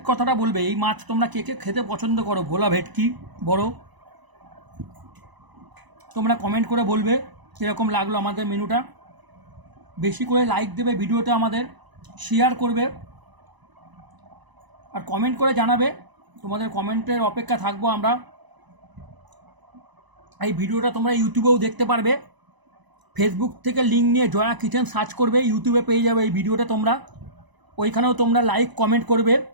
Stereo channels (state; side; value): late; left; 1.0 ms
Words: কথাটা বলবে, এই মাছ তোমরা কে কে খেতে পছন্দ করো, ভোলা ভেটকি বড়। তোমরা কমেন্ট করে বলবে কীরকম লাগলো আমাদের মেনুটা। বেশি করে লাইক দেবে ভিডিওটা, আমাদের শেয়ার করবে, আর কমেন্ট করে জানাবে। তোমাদের কমেন্টের অপেক্ষা থাকবো আমরা। এই ভিডিওটা তোমরা ইউটিউবেও দেখতে পারবে। ফেসবুক থেকে লিঙ্ক নিয়ে জয়া কিচেন সার্চ করবে, ইউটিউবে পেয়ে যাবে এই ভিডিওটা তোমরা। ওইখানেও তোমরা লাইক কমেন্ট করবে।